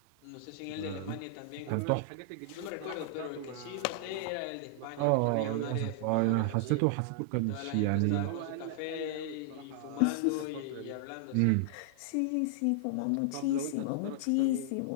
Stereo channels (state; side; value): different; both; correlation -0.01